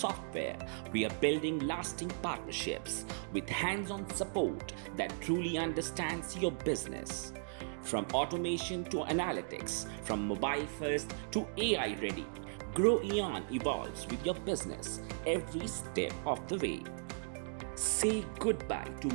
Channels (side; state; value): left; silent; digital silence